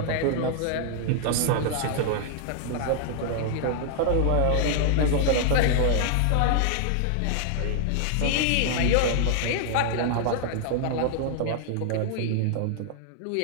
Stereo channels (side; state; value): both; different; correlation -0.01